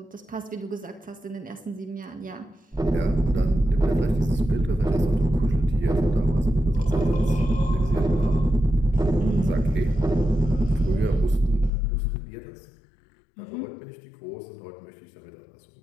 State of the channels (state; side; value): drops out; right; at 11.7 s